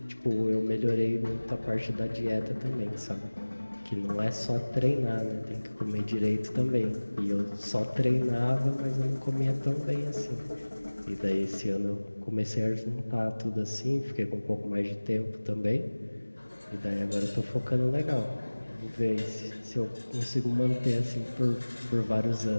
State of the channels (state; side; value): inverted; both; correlation -1.00